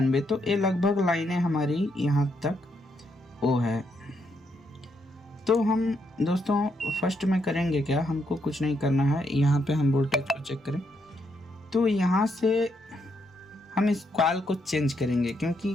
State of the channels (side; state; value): both; normal; correlation 0.77